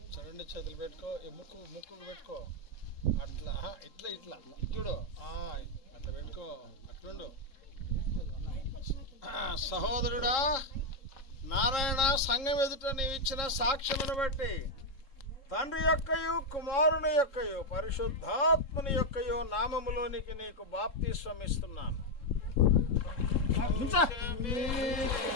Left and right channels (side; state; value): right; late; 3.7 ms